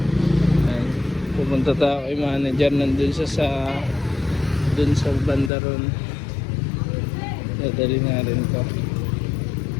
Pupunta tayo kay manager, nandun sa dun sa banda ron. Dadali nga rin ko.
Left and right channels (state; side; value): drops out; right; at 5.5 s